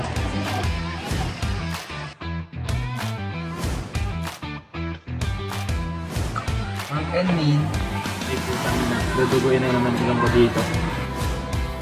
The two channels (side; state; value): both; identical; correlation 1.00